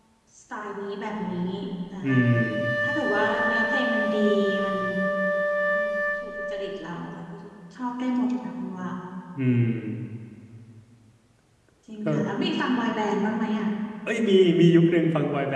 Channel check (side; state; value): both; identical; correlation 1.00